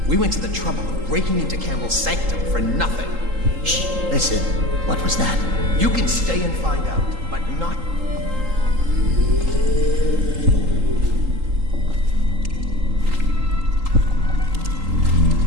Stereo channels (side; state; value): left; late; 3.8 ms